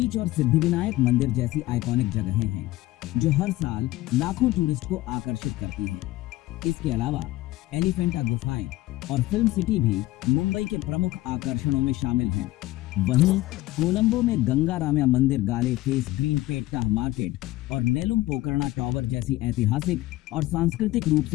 और सिद्धिविनायक मंदिर जैसी आइकॉनिक जगहें हैं जो हर साल लाखों टूरिस्ट को आकर्षित करती हैं। इसके अलावा एलिफेंटा गुफाएं और फिल्म सिटी भी मुंबई के प्रमुख आकर्षणों में शामिल हैं। वहीं कोलंबो में गंगा रामया मंदिर, गाले फेस, ग्रीन पेट्टा मार्केट और नेलुम पोकर्णा टावर जैसी ऐतिहासिक और सांस्कृतिक रूप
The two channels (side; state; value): right; quieter; 17.2 dB